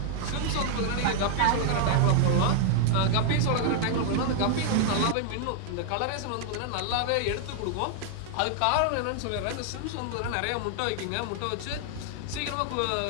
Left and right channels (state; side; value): different; both; correlation 0.00